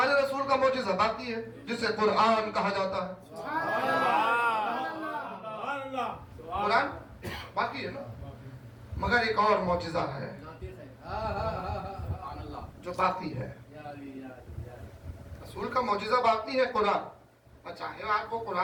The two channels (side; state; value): both; identical; correlation 1.00